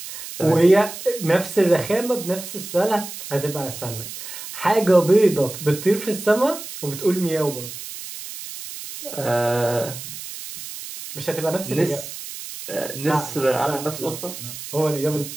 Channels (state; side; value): noise; right; hiss, 11 dB below the sound